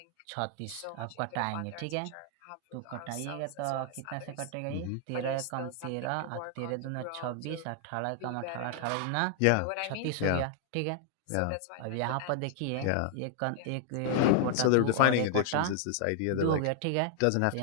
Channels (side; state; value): both; different; correlation -0.01